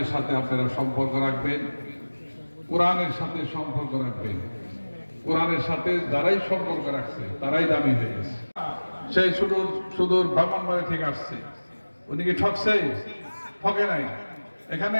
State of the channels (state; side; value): inverted; both; correlation -1.00